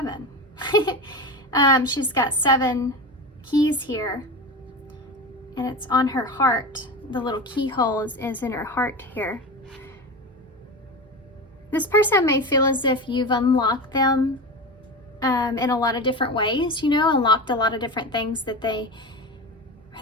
She's got 7 keys here, and it's on her heart. The little keyhole is in her heart here. This person may feel as if you've unlocked them in a lot of different ways, you know, unlocked a lot of different things that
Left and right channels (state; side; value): normal; both; correlation 0.25